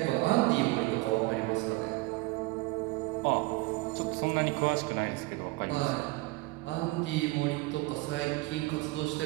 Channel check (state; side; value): quieter; left; 21.8 dB